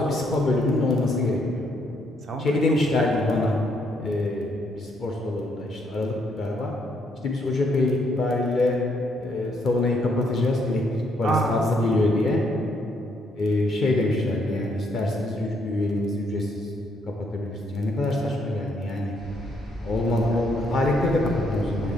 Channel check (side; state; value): both; normal; correlation 0.72